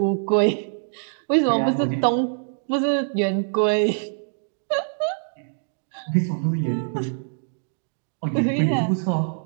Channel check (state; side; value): silent; left; digital silence